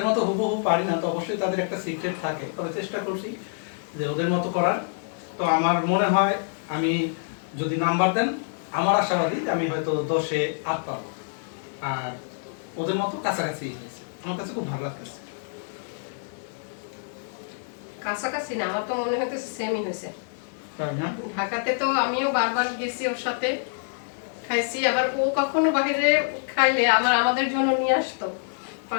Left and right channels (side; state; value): right; silent; digital silence